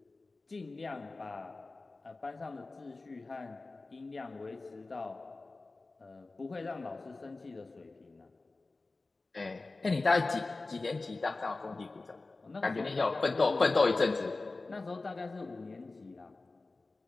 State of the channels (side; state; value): right; quieter; 3.4 dB